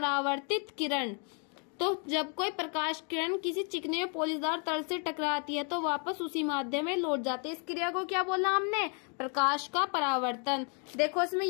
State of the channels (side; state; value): right; quieter; 38.9 dB